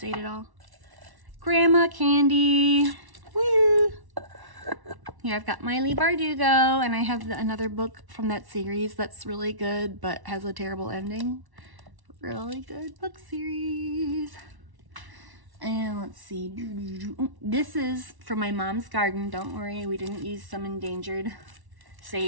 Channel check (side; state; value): left; late; 1.1 ms